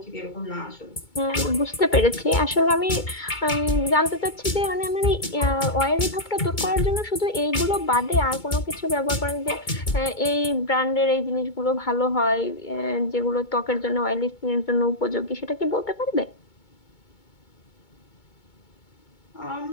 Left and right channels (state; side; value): late; right; 2.2 ms